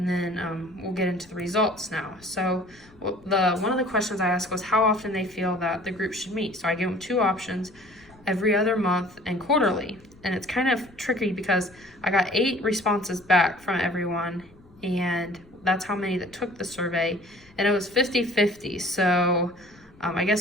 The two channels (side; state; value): left; noise; rumble, 27 dB below the sound